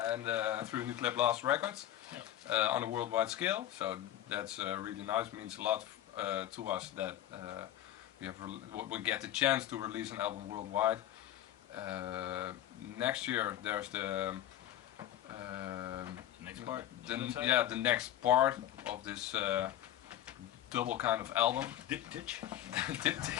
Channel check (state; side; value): quieter; right; 12.3 dB